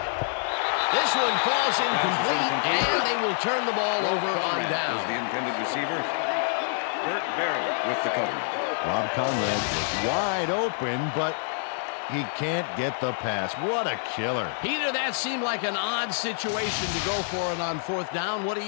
This one falls incomplete, and they will turn the ball over on down. Was the intended receiver. Burt Berry with the cover. Rob Conrad is wide open, but he can't get the pass. What a killer. Peter, that seemed like an odd situation to go for it on fourth down. What do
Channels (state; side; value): silent; right; 57 dB below the other